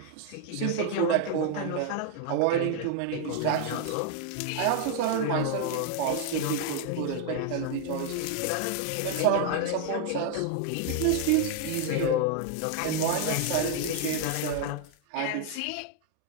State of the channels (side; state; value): both; different; correlation 0.00